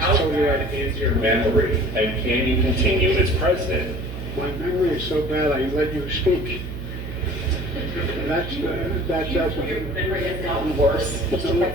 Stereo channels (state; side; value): noise; right; hum, 8 dB below the sound